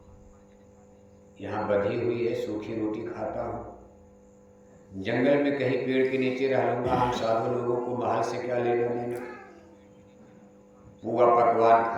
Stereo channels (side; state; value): both; identical; correlation 1.00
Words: यहाँ बधी हुई है, सूखी रोटी खाता हूँ, जंगल में कहीं पेड़ के नीचे रह लूंगा, हम साधु लोगों को महल से क्या लेना देना। पूरा पकवान